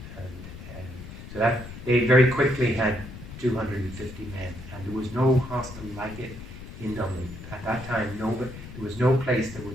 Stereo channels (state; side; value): noise; left; rumble, 13 dB below the sound